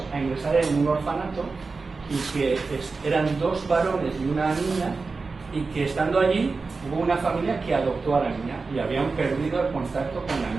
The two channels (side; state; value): left; quieter; 4.2 dB